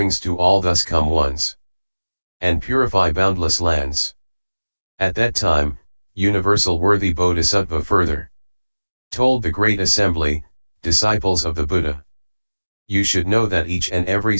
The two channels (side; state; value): both; inverted; correlation -1.00